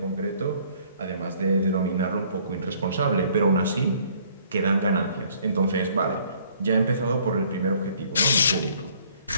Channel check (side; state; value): both; inverted; correlation -0.60